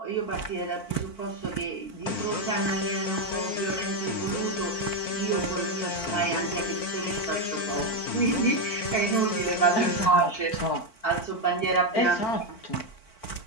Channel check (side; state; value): right; late; 4.5 ms